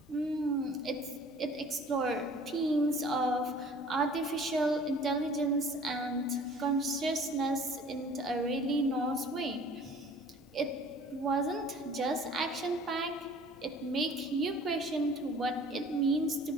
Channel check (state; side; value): normal; both; correlation 0.50